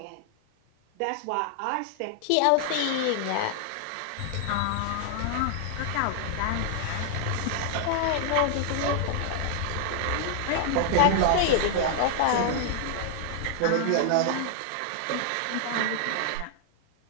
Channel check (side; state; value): both; different; correlation 0.00